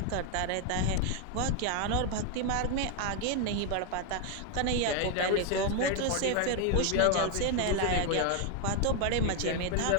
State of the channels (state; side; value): different; both; correlation 0.01